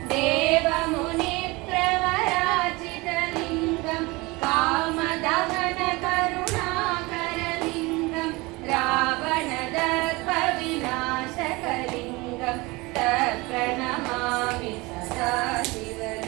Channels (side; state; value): left; quieter; 23.6 dB